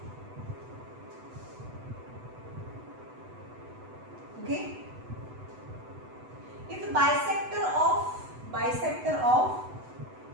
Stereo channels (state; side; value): late; left; 8.0 ms